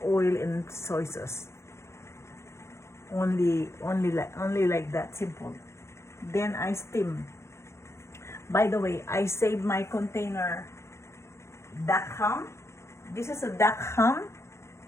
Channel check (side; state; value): right; late; 0.13 ms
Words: oil and soy sauce. Only like that, simple. Then I steam. By the way, I saved my container duck ham. This is a duck ham.